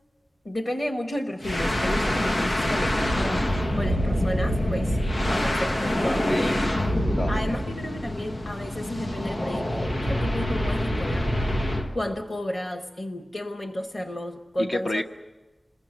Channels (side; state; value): both; normal; correlation 0.95